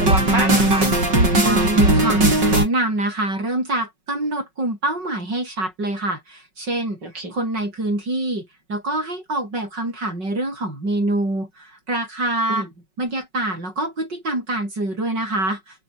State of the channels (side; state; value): left; late; 5.4 ms